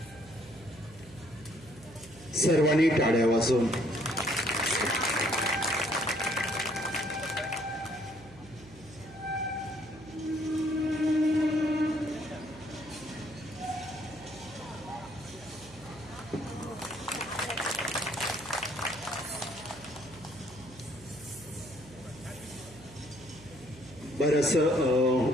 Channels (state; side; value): noise; right; hum, 21 dB below the sound